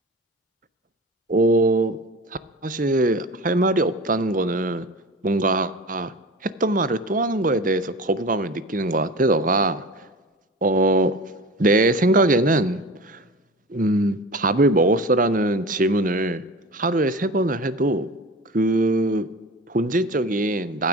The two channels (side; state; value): both; normal; correlation 0.34